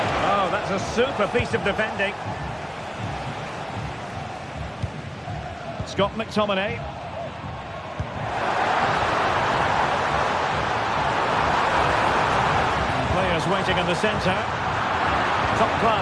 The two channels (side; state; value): both; identical; correlation 1.00